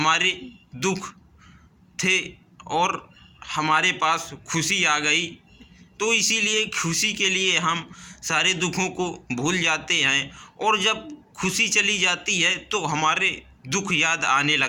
दुख थे और हमारे पास खुशी आ गई। तो इसीलिए खुशी के लिए हम सारे दुखों को भूल जाते हैं और जब खुशी चली जाती है तो हमारे दुख याद आने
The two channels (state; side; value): identical; both; correlation 1.00